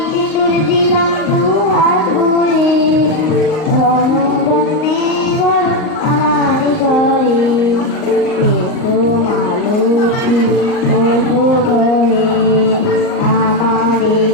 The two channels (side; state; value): right; late; 38 ms